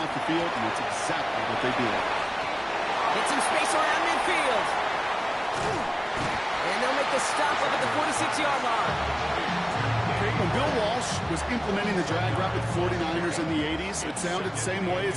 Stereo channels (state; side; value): identical; both; correlation 1.00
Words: the field, and that's exactly what they did. Get some space around midfield. And they'll make the stop up at the 46-yard line. When Bill Walsh was implementing the drag route with the 49ers in the 80s, it sounded the same way